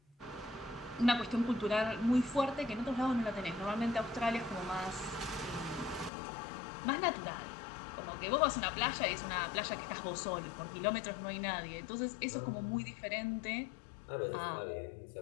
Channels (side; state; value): right; drops out; at 6.1 s